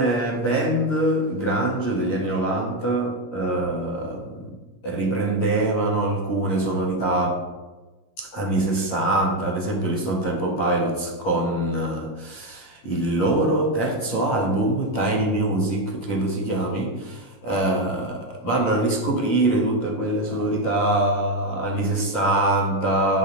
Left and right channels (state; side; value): late; right; 17 ms